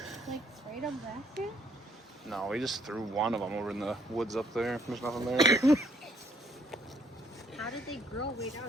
like sprayed them back here? No, we just threw one of them over in the woods up there. There's nothing there. How did they grow way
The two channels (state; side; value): normal; both; correlation 0.66